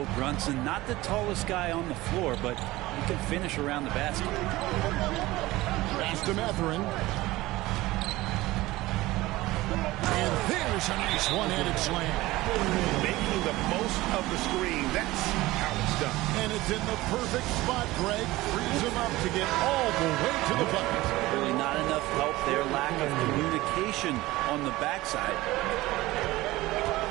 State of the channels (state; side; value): quieter; left; 18.5 dB